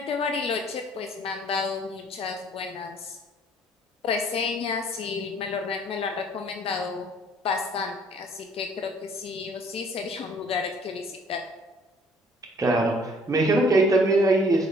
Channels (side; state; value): both; normal; correlation 0.58